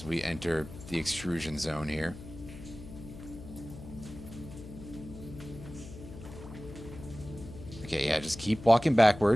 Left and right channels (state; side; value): noise; left; hum, 14 dB below the sound